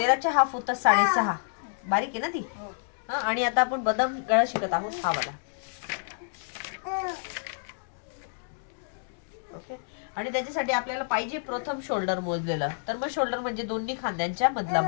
हाफ होतात 6.5. बारीक आहे ना ती. आणि आता आपण बदाम गळा शिकत आहोत हा वाला. ओके. आणि त्याच्यासाठी आपल्याला पाहिजे प्रथम शोल्डर मोजलेलं. तर मग शोल्डर म्हणजे दोन्ही खांद्यांच्या मधला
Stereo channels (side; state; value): right; silent; digital silence